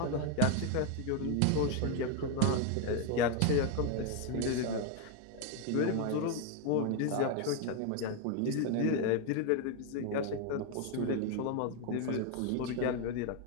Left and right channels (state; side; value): different; both; correlation 0.01